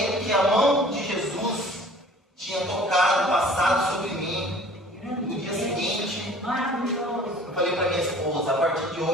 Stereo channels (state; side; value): normal; both; correlation 0.49